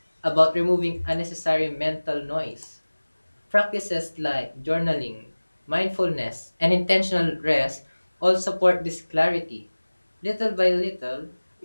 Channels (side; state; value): both; inverted; correlation -1.00